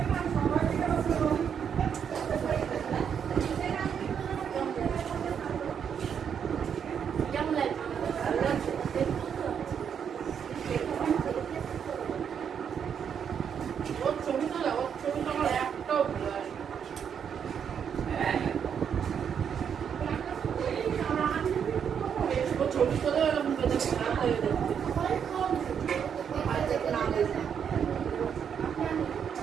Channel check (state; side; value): quieter; left; 7.7 dB